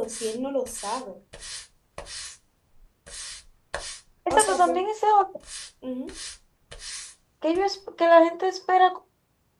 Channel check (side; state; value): both; identical; correlation 1.00